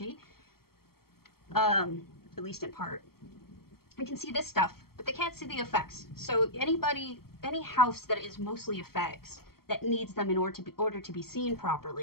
at least in part. They can see this stuff, but they can't see the effects. So any house that is mostly effects that needs them in order to be seen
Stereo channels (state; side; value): late; right; 0.94 ms